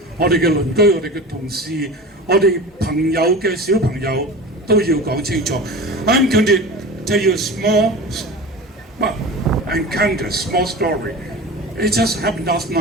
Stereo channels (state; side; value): normal; both; correlation 0.33